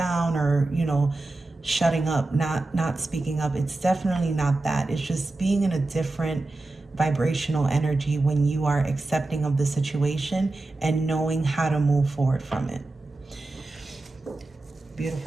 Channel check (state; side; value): quieter; left; 3.0 dB